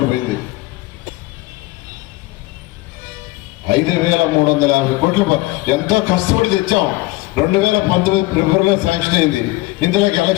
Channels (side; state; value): right; quieter; 19.9 dB